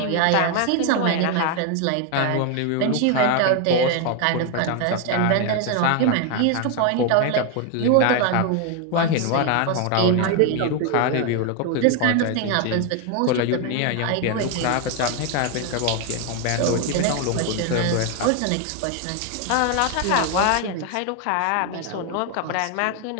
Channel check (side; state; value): both; different; correlation 0.01